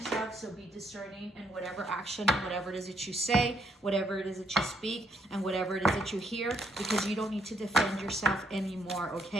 so be discerning in whatever action and whatever it is that you say, whatever it is that you speak, and whatever it is that you hear, because you don't need to defend yourself anymore.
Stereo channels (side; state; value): both; normal; correlation 0.73